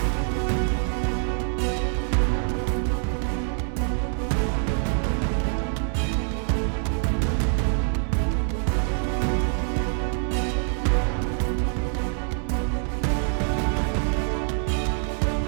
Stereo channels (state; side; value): silent; left; 56 dB below the other